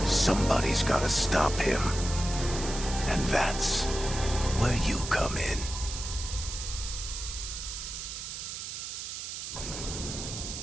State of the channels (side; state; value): right; noise; hiss, 7 dB below the sound